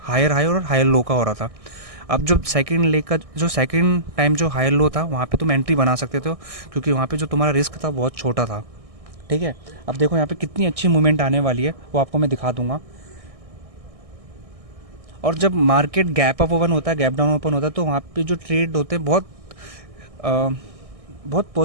हायर हाई और हायर लो का हो रहा था। अब जो सेकंड लेग का जो सेकंड टाइम जो हायर लो था वहाँ पे तुम एंट्री बना सकते थे, क्योंकि वहाँ पे जो तुम्हारा रिस्क था बहुत छोटा था। ठीक है, अब देखो यहाँ पे कितनी अच्छी मूवमेंट आने वाली है वो आपको मैं दिखा दूंगा। और जब मार्केट गैप अप ओपन होता है, गैप डाउन ओपन होता है, तो वहाँ पे जो ट्रेड होते हैं अ, बहुत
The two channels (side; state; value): left; late; 1.6 ms